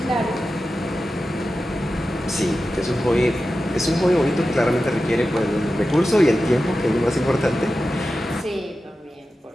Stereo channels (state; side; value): normal; both; correlation 0.93